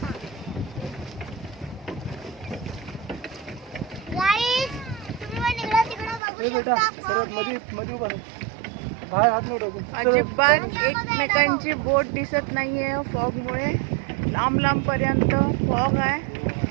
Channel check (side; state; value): left; drops out; at 6.2 s